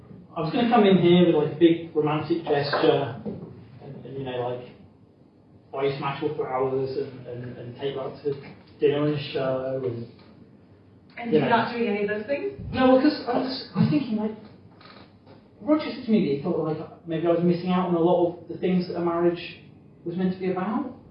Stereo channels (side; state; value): both; identical; correlation 1.00